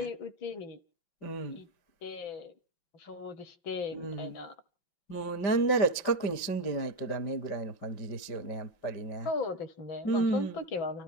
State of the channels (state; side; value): late; right; 5.1 ms